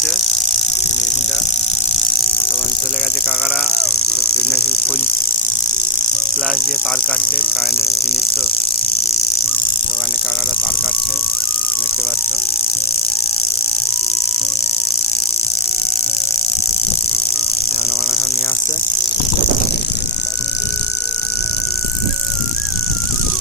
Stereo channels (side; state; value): both; normal; correlation 0.09